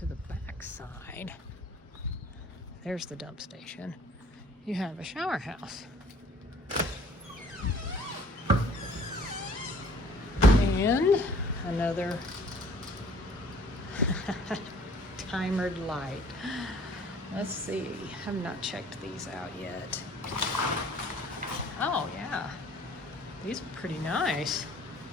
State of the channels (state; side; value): normal; both; correlation 0.54